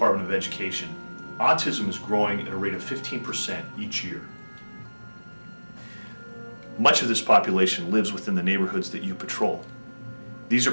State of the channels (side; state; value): both; inverted; correlation -1.00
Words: of Education, autism is growing at a rate of 15% each year. Much of this population lives within the neighborhoods that you patrol. These are